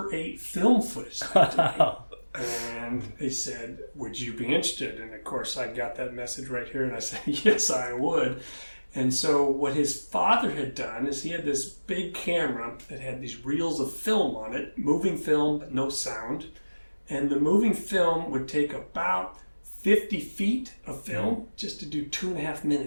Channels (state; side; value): inverted; both; correlation -1.00